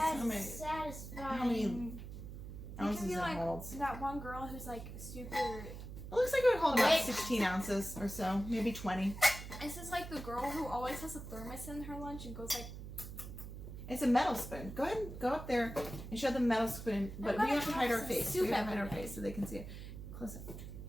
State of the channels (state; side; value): noise; right; hum, 10 dB below the sound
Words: How many satisfying. how many ounces be it like holds? that one girl who's like super. It looks like it would hold about Wait. 16 ounces or so, maybe 20. This is like the girl who always has a thermos in her lunch and goes like. It's a metal spoon. Go ahead and go up there and show them the metal spoon, but we gonna have to hide have our some face. soup We have to hide our every day. face so they can see it. Close up.